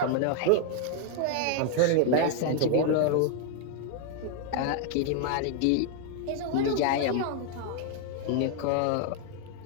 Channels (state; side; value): different; both; correlation 0.00